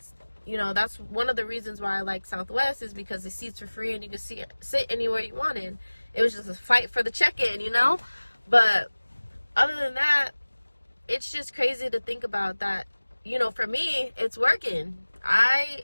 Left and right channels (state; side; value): inverted; both; correlation -1.00